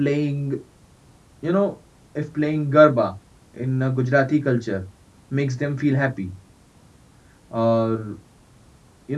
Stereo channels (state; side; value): identical; both; correlation 1.00